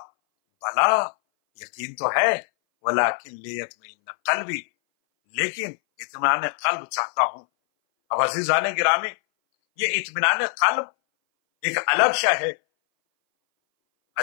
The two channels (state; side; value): silent; right; 60 dB below the other